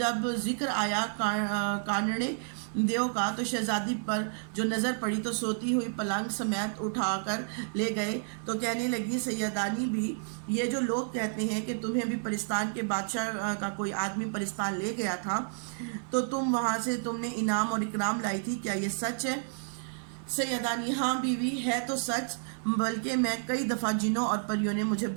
ذکر آیا کانڑے دیو کا تو شہزادی پر جو نظر پڑی تو سوتی ہوئی پلنگ سمیت اٹھا کر لے گئے، تو کہنے لگی سیدانی بھی، یہ جو لوگ کہتے ہیں کہ تمہیں بھی پرستان کے بادشاہ کا کوئی آدمی پرستان لے گیا تھا تو تم وہاں سے تم نے انعام اور اکرام لائی تھی، کیا یہ سچ ہے؟ سیدانی: ہاں بیوی، ہے تو سچ، بلکہ میں کئی دفعہ جنوں اور پریوں نے مجھے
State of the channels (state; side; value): silent; left; digital silence